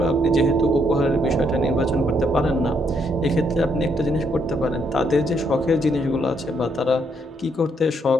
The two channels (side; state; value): both; normal; correlation 0.73